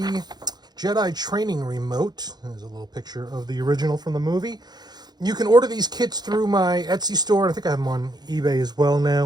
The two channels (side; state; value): left; late; 0.20 ms